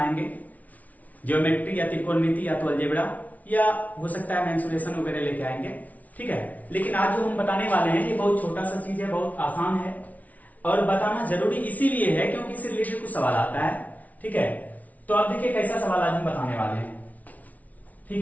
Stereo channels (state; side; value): late; right; 0.072 ms